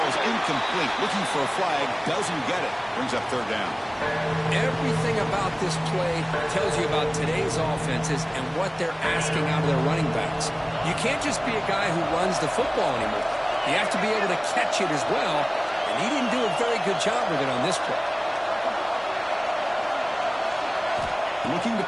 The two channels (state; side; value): identical; both; correlation 1.00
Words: incomplete. Looking for a flag. Doesn't get it. Brings up 3rd down. Everything about this play tells you about today's offenses and what they're asking out of their running backs. You can't just be a guy who runs the football anymore. You have to be able to catch it as well, and he didn't do a very good job with it on this play. Looking to